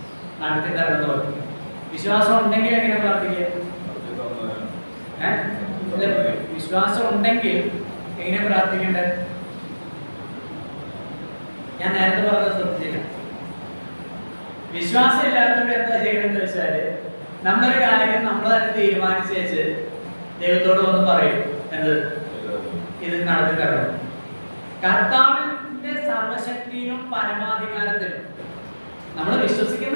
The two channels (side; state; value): both; inverted; correlation -1.00